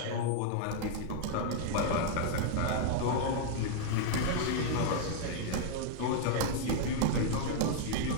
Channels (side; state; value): both; different; correlation -0.01